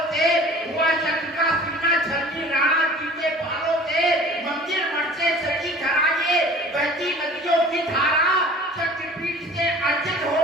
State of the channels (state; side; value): normal; both; correlation 0.46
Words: से। हुआ शक्ति का सीना झलकी राणा जी के बालों से। मंदिर मठ से सजी धराए बहती नदियों की धारा। शक्तिपीठ से अर्जित